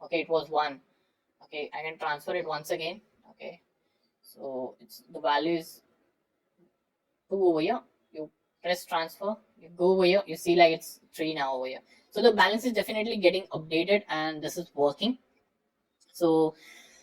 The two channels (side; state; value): both; identical; correlation 1.00